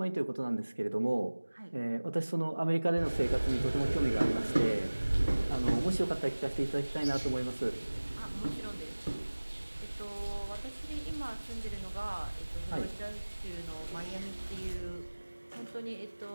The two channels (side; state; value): both; inverted; correlation -1.00